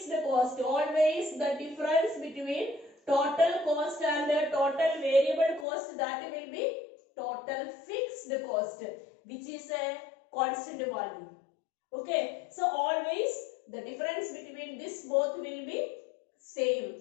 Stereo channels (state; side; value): drops out; right; at 5.7 s